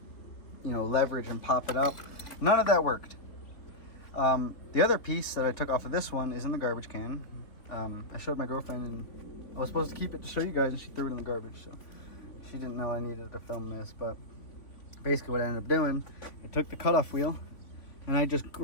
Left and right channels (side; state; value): right; late; 3.8 ms